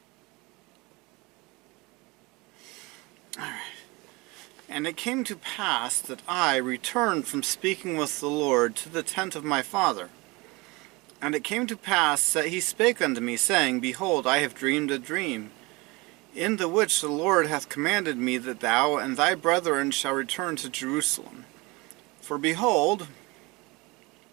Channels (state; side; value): quieter; left; 24.8 dB